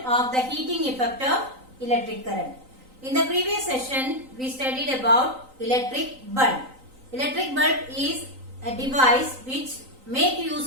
of the heating effect of electric current. In the previous session, we studied about electric bulb. Electric bulb is a device which make use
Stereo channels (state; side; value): late; left; 3.9 ms